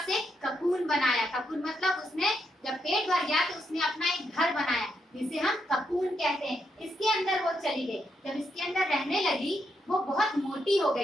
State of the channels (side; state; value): both; normal; correlation 0.81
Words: एक ककून बनाया। ककून मतलब उसने जब पेट भर गया तो उसने अपना एक घर बनाया, जिसे हम ककून कहते हैं। इसके अंदर वो चली गई। जब इसके अंदर रहने लगी, वो बहुत मोटी हो